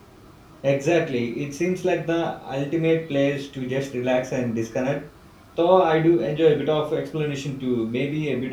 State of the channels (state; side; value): identical; both; correlation 1.00